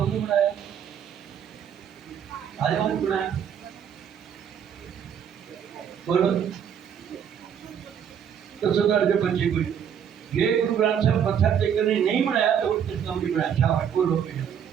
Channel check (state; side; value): quieter; left; 8.4 dB